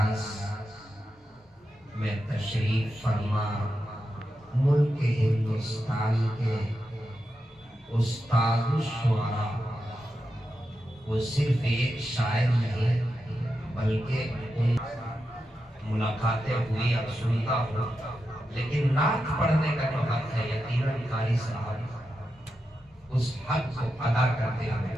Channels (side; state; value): both; normal; correlation 0.88